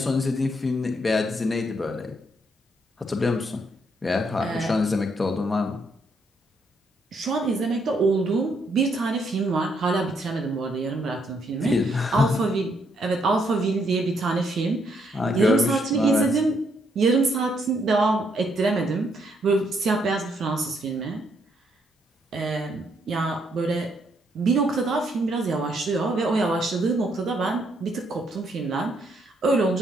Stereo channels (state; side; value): normal; both; correlation 0.73